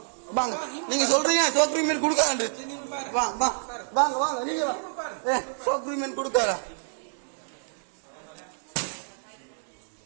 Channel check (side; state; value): left; silent; digital silence